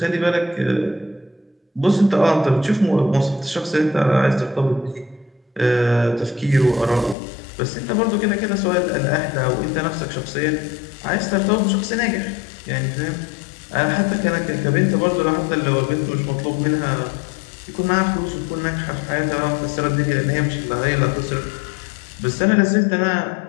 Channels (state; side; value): drops out; right; at 7.2 s